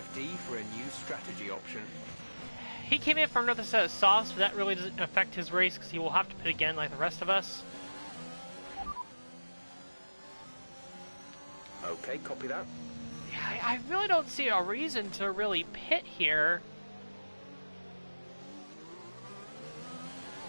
for a new strategy option. He came in for another set of softs, but that really doesn't affect his race because he will have to pit again like the rest of us. Okay, copy that. Yeah, I really don't see a reason to really pit here.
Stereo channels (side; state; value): both; inverted; correlation -1.00